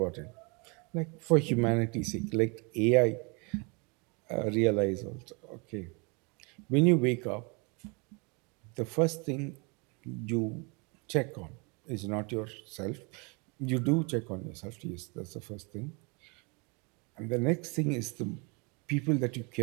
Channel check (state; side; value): quieter; left; 31.6 dB